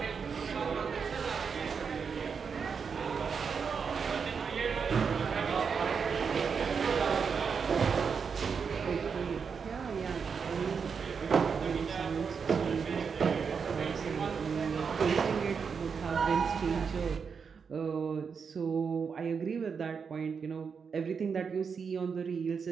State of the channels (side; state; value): left; quieter; 6.0 dB